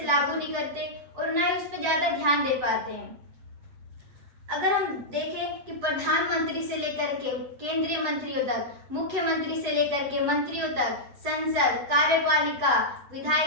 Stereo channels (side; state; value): left; late; 7.9 ms